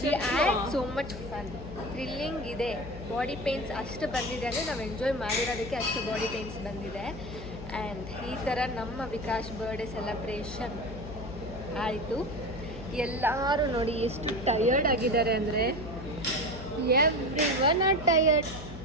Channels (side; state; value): left; noise; hum, 11 dB below the sound